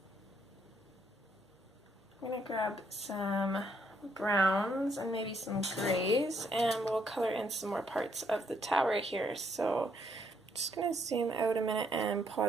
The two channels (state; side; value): normal; both; correlation 0.72